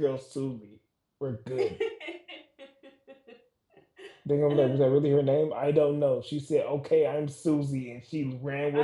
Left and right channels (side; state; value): both; identical; correlation 1.00